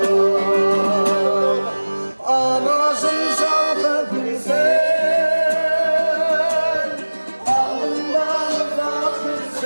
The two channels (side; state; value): both; inverted; correlation -1.00